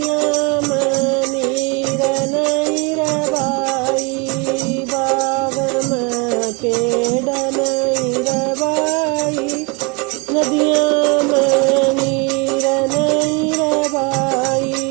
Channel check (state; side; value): quieter; left; 29.8 dB